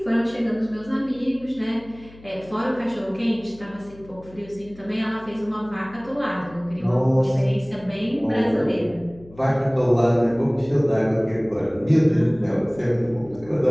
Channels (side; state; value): left; noise; hum, 22 dB below the sound